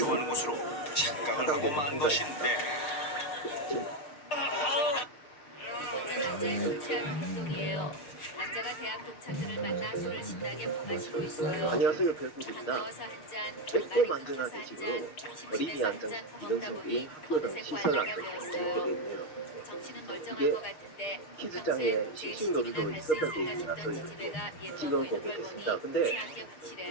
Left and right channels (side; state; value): right; late; 6.6 ms